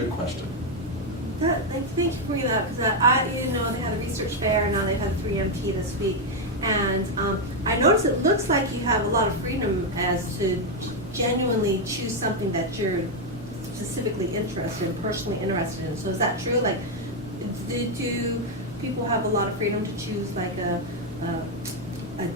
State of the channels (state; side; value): normal; both; correlation 0.03